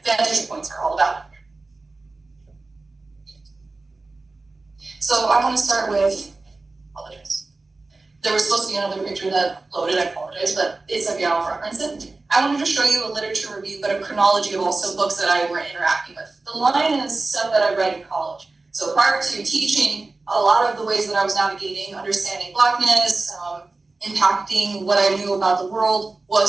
vantage points are all about. So I want to start with, apologize. There was supposed to be another picture that loaded, I apologize, but it's okay, I'll reference it. I wanted to show you a literature review, but a chronology of also books that I were interacting with. The line is stuff that I read in college. So prior to teaching, a lot of the ways that I was navigating, understanding Blackness, impacting what I knew about the world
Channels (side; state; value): left; quieter; 3.4 dB